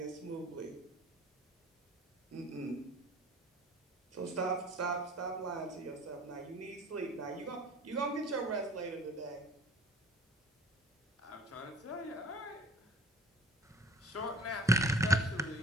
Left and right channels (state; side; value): normal; both; correlation 0.47